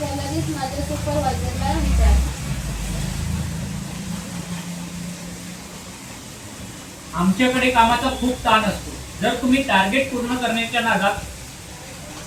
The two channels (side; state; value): both; identical; correlation 1.00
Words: लगेच माझ्या सुपरवायझरला विचारते. आमच्याकडे कामाचा खूप ताण असतो. जर तुम्ही टार्गेट पूर्ण करण्याच्या नादात